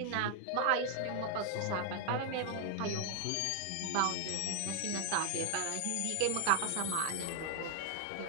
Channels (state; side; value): different; both; correlation 0.00